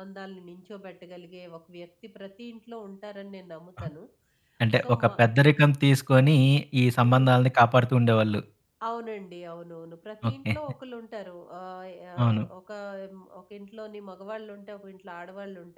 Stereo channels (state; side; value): identical; both; correlation 1.00